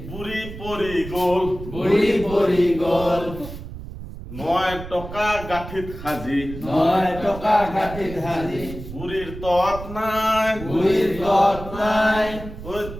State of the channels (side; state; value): right; noise; rumble, 11 dB below the sound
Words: বুঢ়ী পৰি গ'ল, বুঢ়ী পৰি গ'ল। 9 টকা গাঁঠিত সাজি 9 টকা গাঁঠিত সাজি বুঢ়ীৰ তত নাই, বুঢ়ীৰ তত নাই, ওই